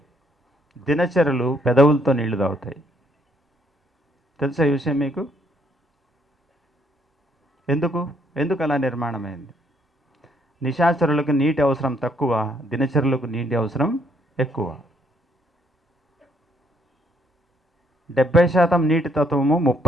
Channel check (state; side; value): normal; both; correlation 0.70